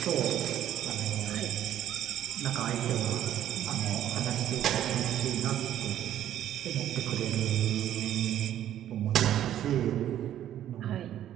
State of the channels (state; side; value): quieter; left; 11.5 dB